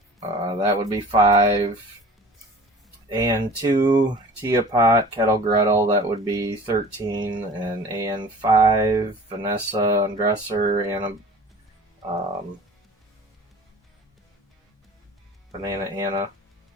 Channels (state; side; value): normal; both; correlation 0.43